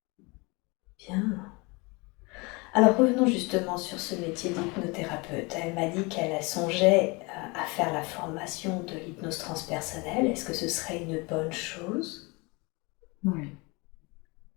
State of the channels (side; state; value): right; quieter; 27.2 dB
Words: Bien. Alors revenons justement sur ce métier d'hypnothérapeute. Elle m'a dit qu'elle songeait à faire la formation de l'hypnose transpersonnelle. Est-ce que ce serait une bonne chose? Oui.